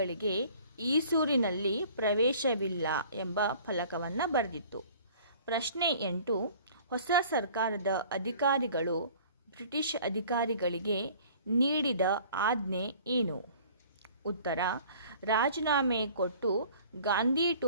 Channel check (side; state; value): both; inverted; correlation -0.50